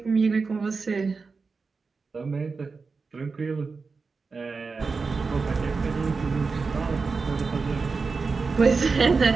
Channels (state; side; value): quieter; left; 4.5 dB